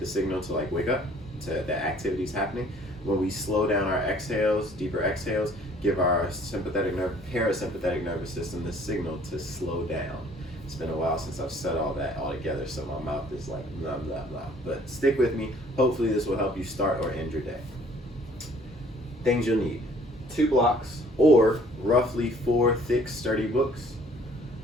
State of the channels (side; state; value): both; normal; correlation 0.57